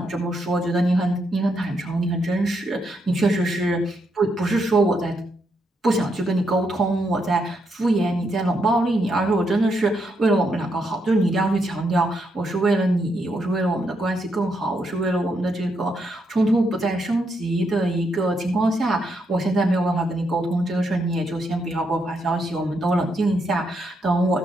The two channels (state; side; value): normal; both; correlation 0.79